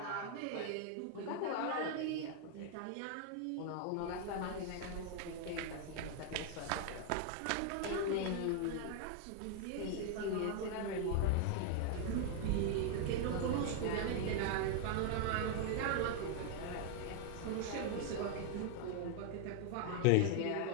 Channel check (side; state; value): both; different; correlation 0.00